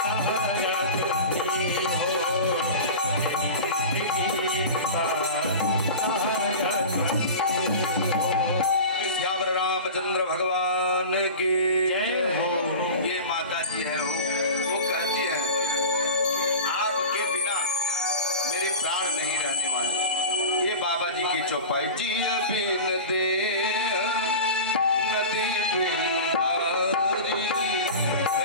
तुम हो मेरी जिंदगी का सहारा तुम हो श्यावर रामचंद्र भगवान की जय हो। ये माता जी है वो कहती है आपके बिना मेरे प्राण नहीं रहने वाले। ये बाबा जी की चौपाई, जिय बिन दे नदी बिन बारी,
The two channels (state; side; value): inverted; both; correlation -0.32